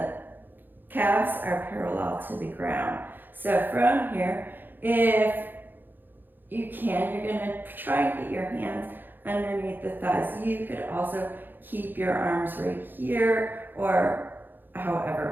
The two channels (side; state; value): left; late; 0.092 ms